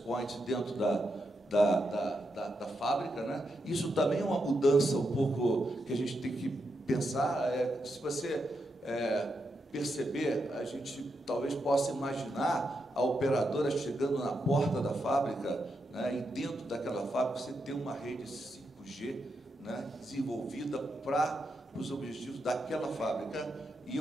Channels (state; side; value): normal; both; correlation 0.84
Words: dentro da fábrica, né? Isso também é uma mudança um pouco que a gente tem que pensar. Se você perceber, a gente talvez possa imaginar a operadora chegando na porta da fábrica, né, e dentro daquela fábrica você ter uma rede 5G, né, desenvolvida para os objetivos daquela fábrica, e